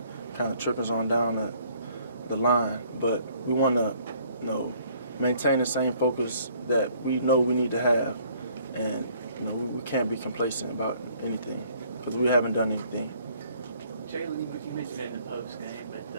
kind of trickles on down the line. But we want to, you know, maintain the same focus that we know we need to have, and you know, we can't be complacent about anything because we haven't done anything. Jalen, you mentioned it in the post game, but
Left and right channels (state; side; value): inverted; both; correlation -0.61